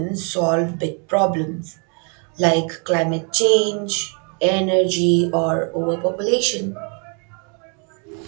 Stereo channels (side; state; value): left; quieter; 37.5 dB